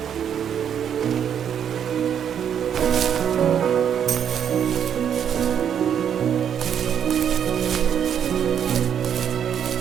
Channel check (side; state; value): left; quieter; 8.6 dB